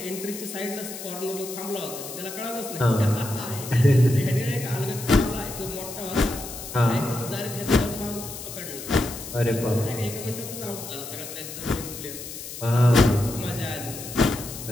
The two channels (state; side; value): noise; left; hiss, 10 dB below the sound